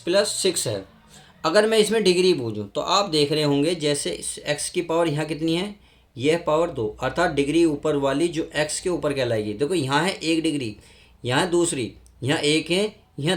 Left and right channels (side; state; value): both; identical; correlation 1.00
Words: 6 है, अगर मैं इसमें डिग्री बूझूँ तो आप देख रहे होंगे जैसे x की पावर यहाँ कितनी है, यह पावर 2, अर्थात डिग्री ऊपर वाली जो x के ऊपर कहलाएगी। देखो यहाँ है 1 डिग्री, यहाँ दूसरी, यहाँ 1 है,